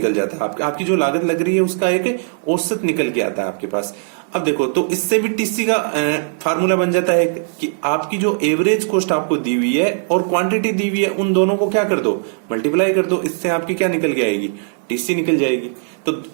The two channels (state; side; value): silent; left; digital silence